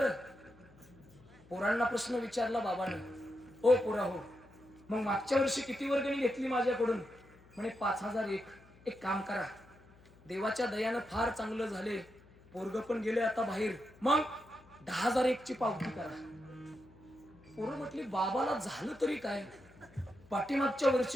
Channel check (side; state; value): left; noise; hum, 26 dB below the sound